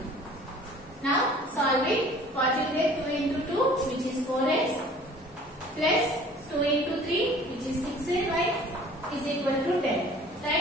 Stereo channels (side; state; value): both; normal; correlation 0.49